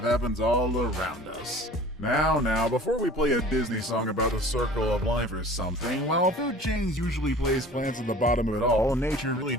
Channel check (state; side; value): normal; both; correlation 0.44